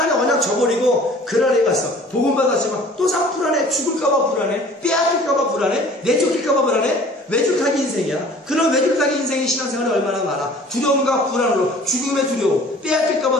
언약 저버리고 그랄에 갔어. 복음 받았지만 또 상 불안해. 죽을까봐 불안해. 빼앗길까봐 불안해. 내쫓길까봐 불안해. 외줄타기 인생이야. 그런 외줄타기 인생의 신앙생활이 얼마나 많아. 두려움과 불안으로 죽음의 두려움,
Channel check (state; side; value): normal; both; correlation 0.49